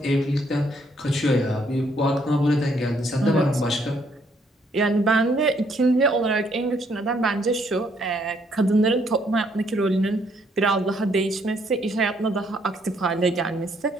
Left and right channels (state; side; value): normal; both; correlation 0.69